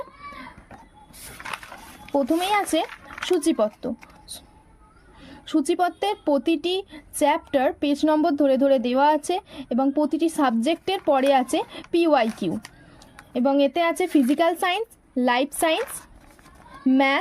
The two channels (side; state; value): both; identical; correlation 1.00